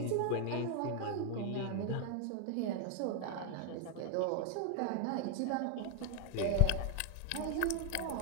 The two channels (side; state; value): both; different; correlation 0.00